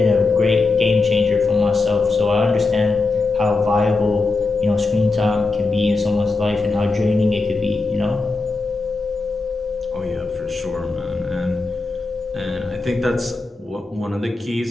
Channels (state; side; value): quieter; right; 3.6 dB